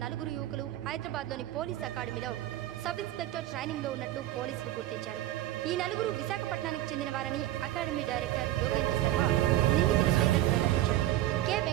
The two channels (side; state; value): left; quieter; 14.3 dB